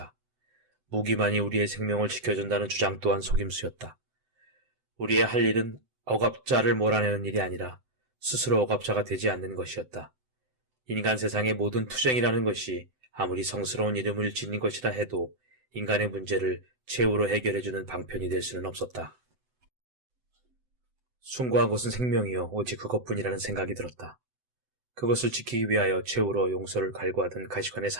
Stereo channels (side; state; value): left; late; 7.9 ms